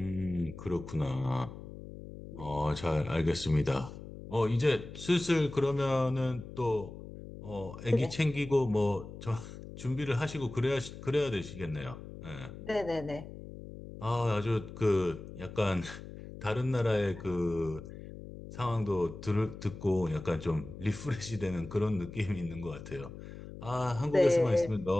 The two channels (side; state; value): left; noise; hum, 13 dB below the sound